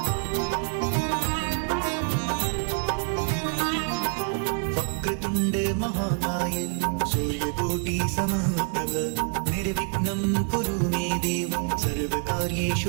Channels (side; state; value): left; quieter; 38.8 dB